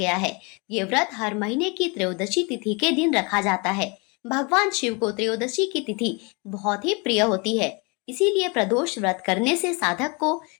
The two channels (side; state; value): right; quieter; 30.2 dB